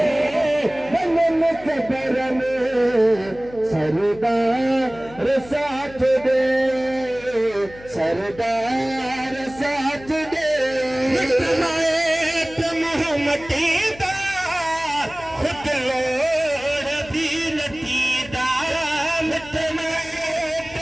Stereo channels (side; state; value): left; noise; hum, 19 dB below the sound